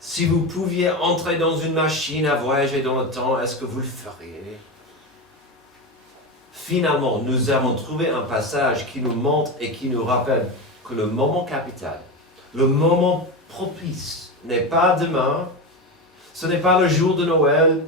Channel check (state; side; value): normal; both; correlation 0.19